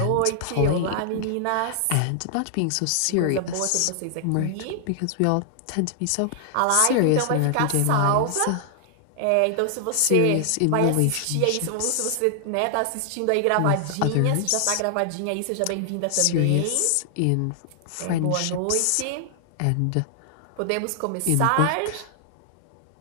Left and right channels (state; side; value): different; both; correlation -0.01